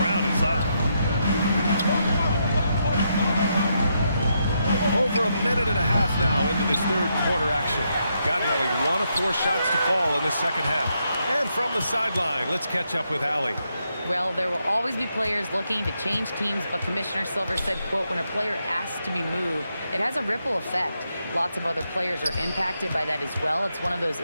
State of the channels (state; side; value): inverted; both; correlation -0.80